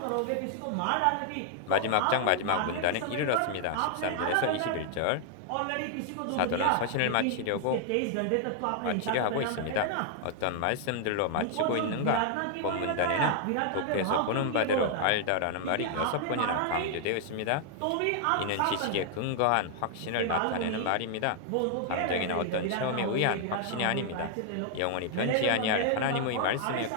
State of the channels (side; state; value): both; different; correlation 0.00